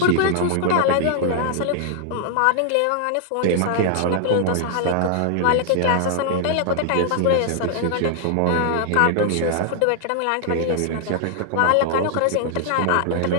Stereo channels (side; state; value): both; different; correlation -0.01